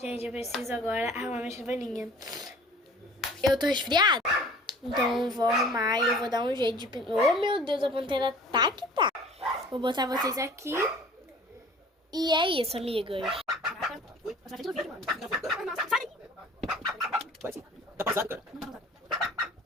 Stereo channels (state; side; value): normal; both; correlation 0.48